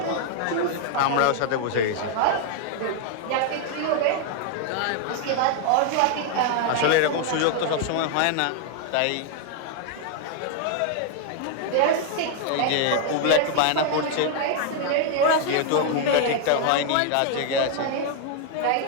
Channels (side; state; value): both; different; correlation 0.00